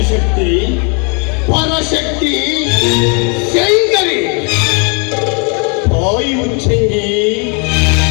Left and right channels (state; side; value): quieter; right; 36.2 dB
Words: ಪರಶಕ್ತಿ ಶಂಕರಿ ತಾಯಿ ಉಚ್ಚಂಗಿ